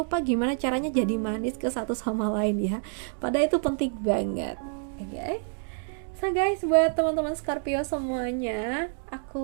gimana caranya jadi manis ke satu sama lain ya. Padahal itu penting banget. Oke. So guys, buat teman-teman Scorpio semuanya,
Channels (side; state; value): left; silent; digital silence